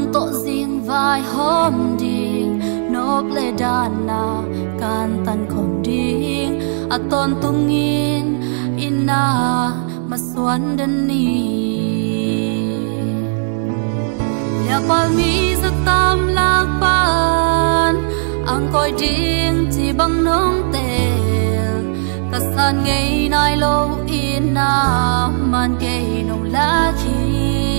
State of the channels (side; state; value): left; silent; digital silence